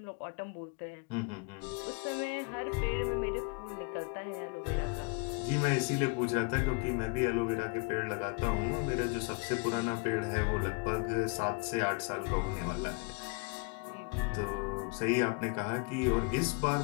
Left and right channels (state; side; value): quieter; right; 31.5 dB